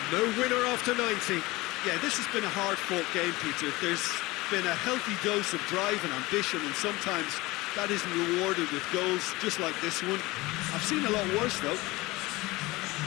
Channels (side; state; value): right; quieter; 21.1 dB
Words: No winner after 90. Yeah, this has been a hard-fought game, Peter. There's been a healthy dose of drive and ambition, and sometimes that isn't rewarded with goals just like this one. I've seen a lot worse, though.